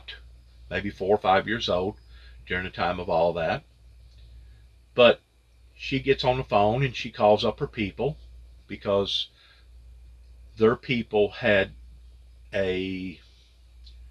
maybe 4 or 5 years old during the time of all that. But she gets on the phone and she calls up her people, because their people had I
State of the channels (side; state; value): both; identical; correlation 1.00